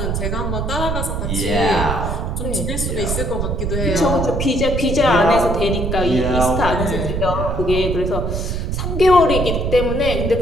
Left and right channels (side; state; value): right; noise; rumble, 2 dB below the sound